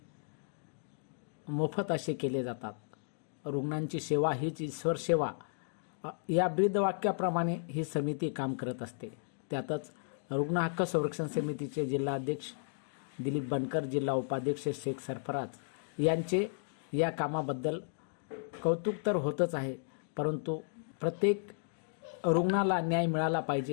मोफत असे केले जातात। रुग्णांची सेवा हीच ईश्वर सेवा या ब्रीदवाक्याप्रमाणे ही समिती काम करत असते। त्यातच रुग्ण हक्क संरक्षण समितीचे जिल्हाध्यक्ष दिलीप बनकर, जिल्हा उपाध्यक्ष शेख सरफराज यांचे या कामाबद्दल कौतुक तर होतच आहे, परंतु प्रत्येक रुग्णाला न्याय मिळाला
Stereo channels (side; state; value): right; silent; digital silence